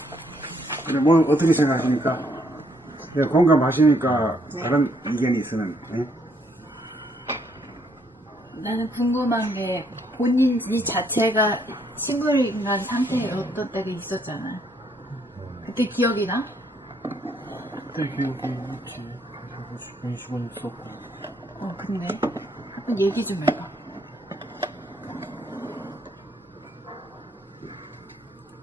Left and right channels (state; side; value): normal; both; correlation 0.70